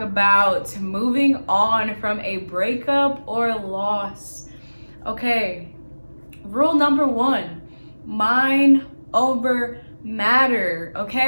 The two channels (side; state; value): both; inverted; correlation -1.00